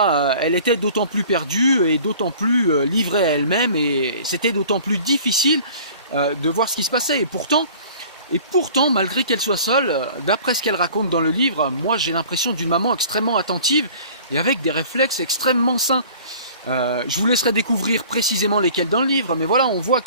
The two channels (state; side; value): inverted; both; correlation -0.47